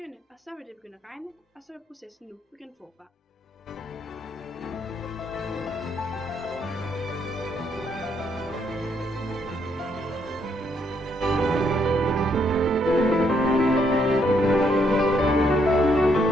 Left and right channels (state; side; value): normal; both; correlation 0.72